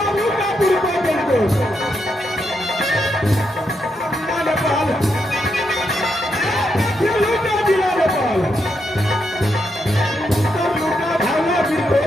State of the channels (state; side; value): normal; both; correlation 0.81